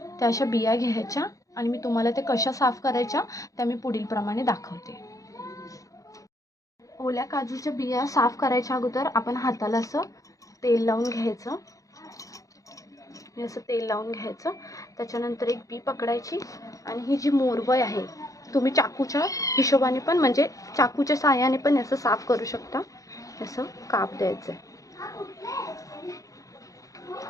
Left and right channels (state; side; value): late; right; 0.16 ms